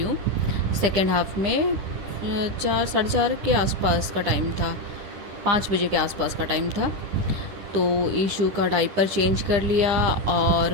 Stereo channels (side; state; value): left; late; 10 ms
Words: सेकेंड हाफ में 4 साढ़े 4 के आसपास का टाइम था, 5 बजे के आसपास का टाइम था। तो ईशू का डाइपर चेंज कर लिया